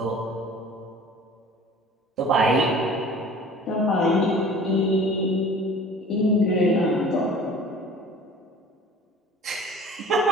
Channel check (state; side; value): normal; both; correlation 0.45